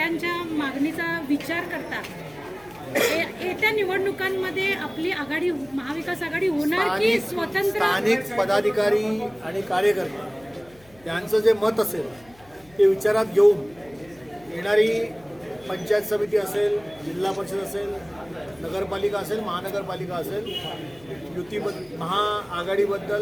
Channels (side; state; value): left; noise; hum, 27 dB below the sound